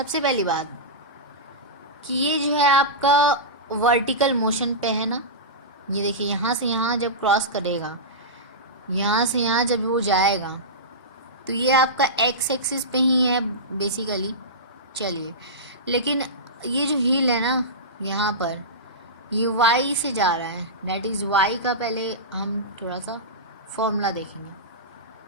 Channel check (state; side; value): normal; both; correlation -0.16